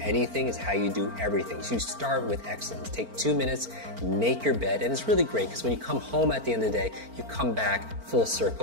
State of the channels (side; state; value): left; late; 4.4 ms